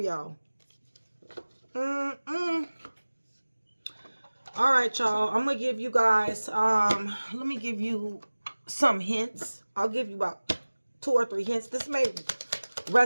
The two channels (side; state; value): both; inverted; correlation -1.00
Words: All right, y'all. I'm going to give you guys, let me give you some hints. I'll give you about 2 or 3 hints. This may